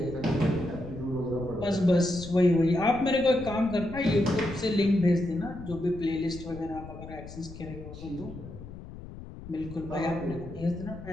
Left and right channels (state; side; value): noise; left; rumble, 13 dB below the sound